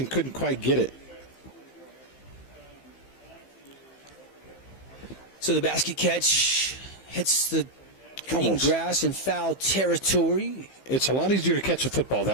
couldn't quite get it. So the basket catch hits the green grass in foul territory. It's a lot easier to catch a football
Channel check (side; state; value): right; late; 15 ms